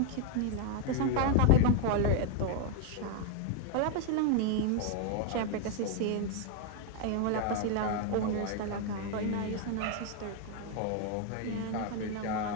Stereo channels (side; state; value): both; different; correlation 0.00